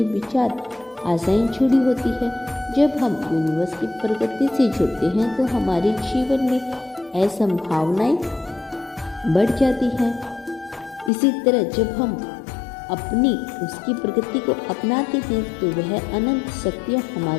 विचार, आशाएं जुड़ी होती है। जब हम यूनिवर्स की प्रकृति से जुड़ते हैं तो हमारे जीवन में असंभावनाएं बढ़ जाती हैं। इसी तरह जब हम अपनी उसकी प्रकृति को अपनाते हैं तो वह अनंत शक्तियाँ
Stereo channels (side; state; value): right; drops out; at 11.1 s